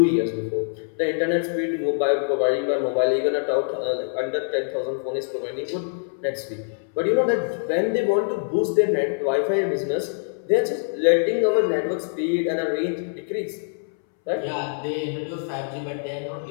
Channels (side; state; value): right; silent; 62 dB below the other